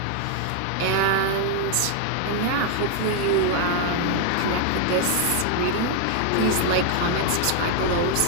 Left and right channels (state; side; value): different; both; correlation 0.00